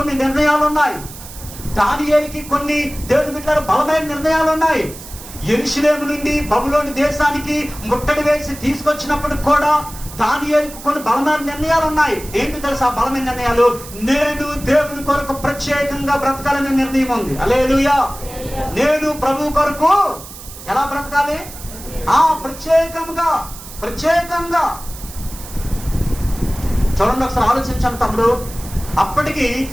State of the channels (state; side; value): noise; right; hiss, 15 dB below the sound